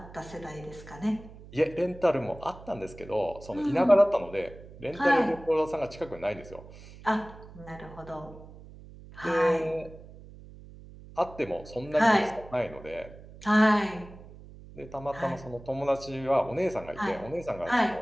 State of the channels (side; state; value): right; noise; hum, 18 dB below the sound